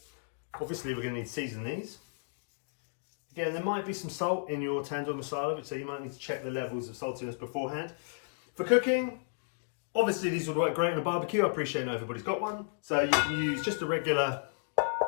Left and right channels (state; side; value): silent; right; digital silence